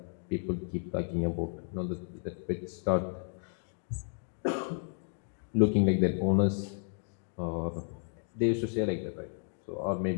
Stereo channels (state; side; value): silent; right; 56 dB below the other